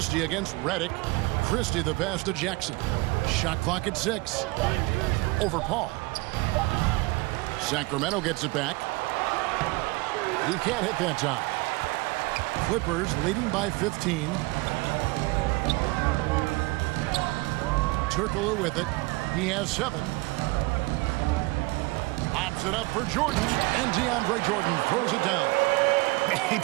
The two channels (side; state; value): left; quieter; 23.8 dB